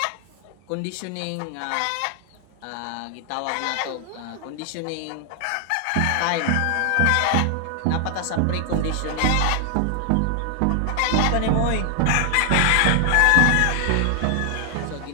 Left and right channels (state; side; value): different; both; correlation 0.00